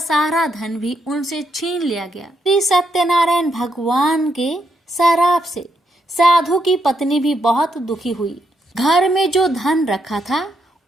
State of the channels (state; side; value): normal; both; correlation 0.78